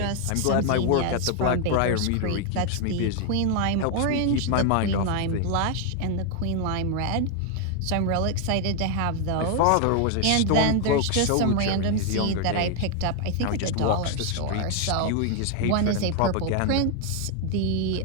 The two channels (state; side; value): different; both; correlation 0.00